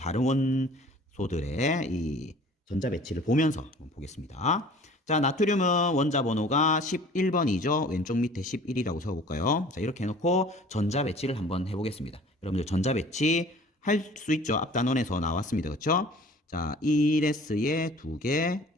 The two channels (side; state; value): both; normal; correlation 0.48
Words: 원소들의 이 전자 배치를 보면서 한번 보겠습니다. 자, 나트륨은 원자 번호가 11번이죠. 왼쪽 밑에 11이라고 적어볼까요? 자, 이렇게 해놓고 전자 배치를 한번 해보겠습니다. 여러분들 전자 배치 할 수 있죠. 앞 단원에서 나왔습니다. 그렇죠? 자, 1S에 2개,